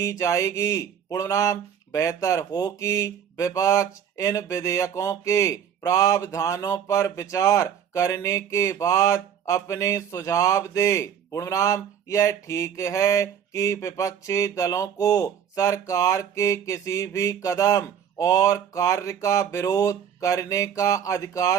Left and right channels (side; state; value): left; quieter; 8.7 dB